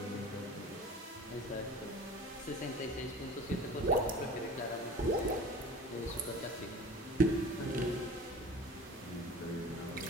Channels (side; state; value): both; normal; correlation 0.40